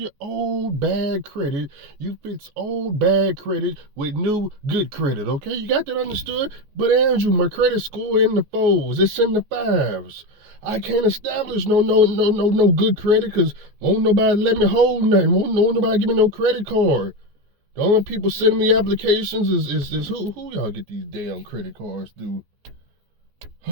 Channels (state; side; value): late; left; 14 ms